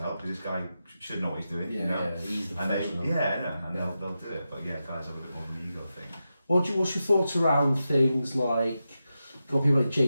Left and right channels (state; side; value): inverted; both; correlation -0.90